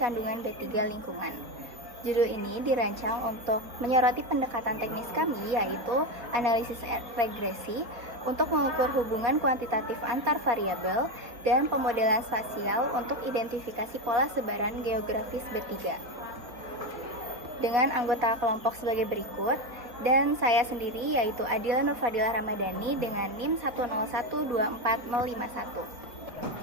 B3 lingkungan. Judul ini dirancang untuk menyoroti pendekatan teknis kami, yaitu analisis regresi untuk mengukur hubungan kuantitatif antar variabel dan pemodelan spasial untuk identifikasi pola sebaran geografis B3. Dengan anggota kelompok sebagai berikut, dan saya sendiri yaitu Adila Nurfadilah Ramadhani dengan NIM 1012451.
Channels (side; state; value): left; late; 4.0 ms